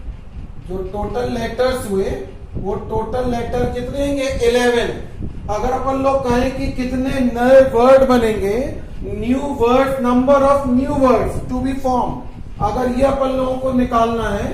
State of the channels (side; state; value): both; identical; correlation 1.00